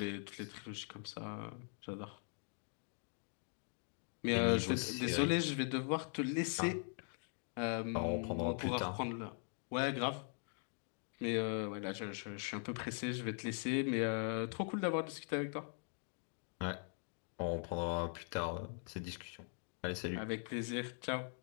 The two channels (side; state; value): right; silent; 50 dB below the other